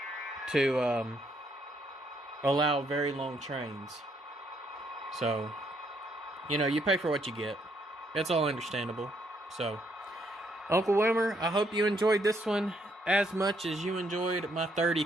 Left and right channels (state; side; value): normal; both; correlation 0.72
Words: to allow very long trains. So, you know, you pay for what you get. That's all understandable. So, Uncle Wilmer, I hope you enjoyed this one as much as you enjoyed my 30